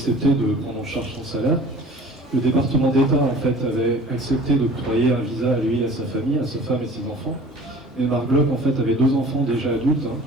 de prendre en charge son salaire. Le département d'État, en fait, avait accepté d'octroyer un visa à lui et à sa famille, à sa femme et ses enfants. Et Marc Bloch, en fait, avait 2 enfants déjà adultes,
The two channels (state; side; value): normal; both; correlation 0.46